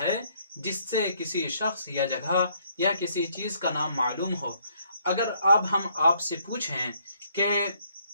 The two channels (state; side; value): inverted; both; correlation -0.68